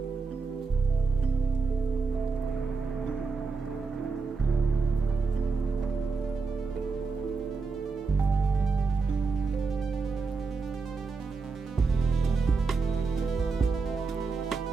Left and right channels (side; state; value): left; quieter; 4.6 dB